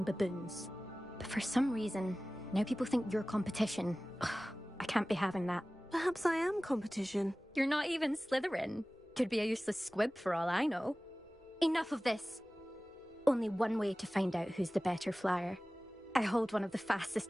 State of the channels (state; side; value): normal; both; correlation 0.97